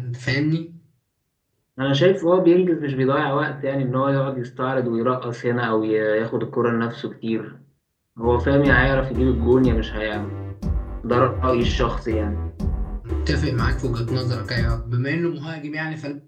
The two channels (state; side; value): identical; both; correlation 1.00